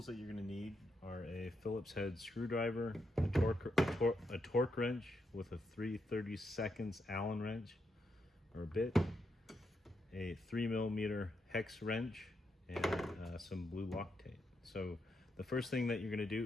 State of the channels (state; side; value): normal; both; correlation 0.82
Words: that you're going to need are a Phillips head screwdriver, a torque wrench with a 3/32 Allen wrench or bit, a 3mm hex wrench, and some blue Loctite. So the first thing that you're going to